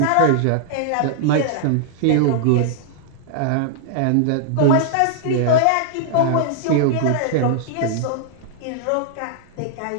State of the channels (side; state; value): both; different; correlation -0.01